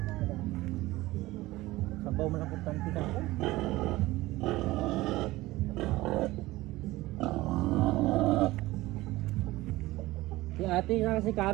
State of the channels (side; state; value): left; quieter; 18.5 dB